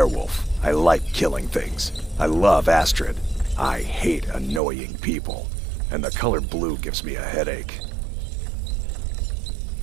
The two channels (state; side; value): drops out; left; at 4.6 s